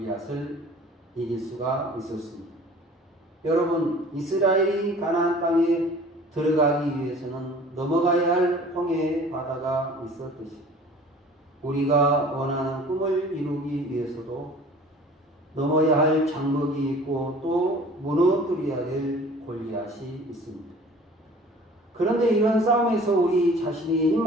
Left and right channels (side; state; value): both; normal; correlation 0.47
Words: 이길 수가 있었습니다. 여러분, 이스라엘이 가나안 땅에 들어가기 위해서는 넘어가야 할 홍해의 바다가 있었듯이 우리가 원하는 꿈을 이루기 위해서도 넘어야 할 장벽이 있고 또 무너뜨려야 될 골리앗이 있습니다. 그런데 이런 싸움에서 우리 자신이